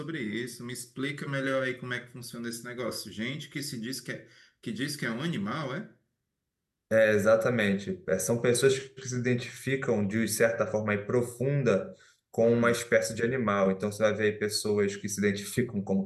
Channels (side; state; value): both; identical; correlation 1.00